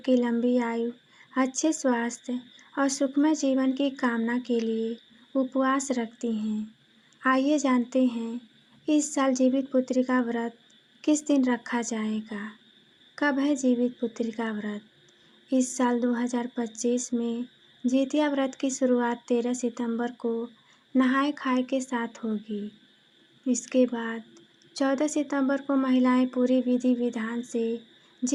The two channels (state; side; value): identical; both; correlation 1.00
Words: लंबी आयु, अच्छे स्वास्थ्य और सुखमय जीवन की कामना के लिए उपवास रखती हैं। आइए जानते हैं इस साल जीवित पुत्री का व्रत किस दिन रखा जाएगा। कब है जीवित पुत्री का व्रत? इस साल 2025 में जितिया व्रत की शुरुआत 13 सितंबर को नहाए खाए के साथ होगी। इसके बाद 14 सितंबर को महिलाएं पूरी विधि विधान से